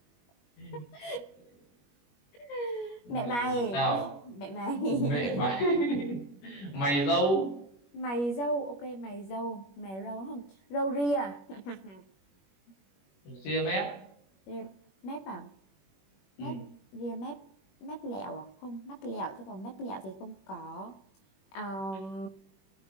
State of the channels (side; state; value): right; late; 21 ms